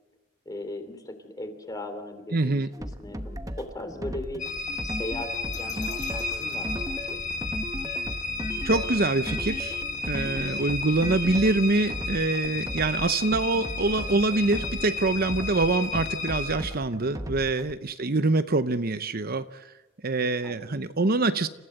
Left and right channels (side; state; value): both; normal; correlation 0.40